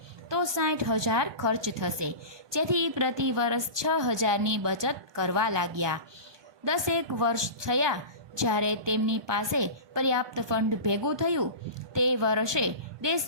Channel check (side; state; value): left; late; 1.2 ms